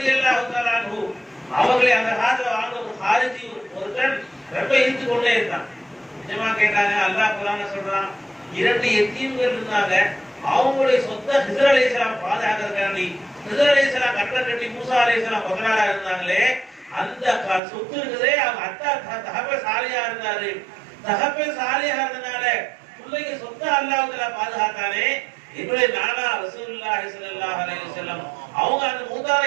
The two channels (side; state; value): left; drops out; at 17.6 s